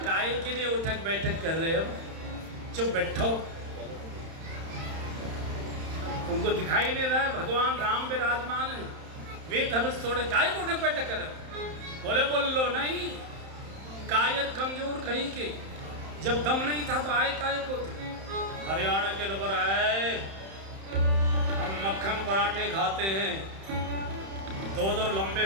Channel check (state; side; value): late; left; 31 ms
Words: काय के लिए उठक बैठक कर रहे हो, चुप बैठो। उनको दिखाई नहीं रहा भगवान राम विराजमान है, वे धनुष तोड़े, काय को उठक बैठक कर। बोले बोल लो नहीं, कायर कमजोर कहीं के, जब दम नहीं था तो आए काय को थे। हरियाणा के लोग आए, हम मक्खन पराठे खाते हैं, दो दो लंबे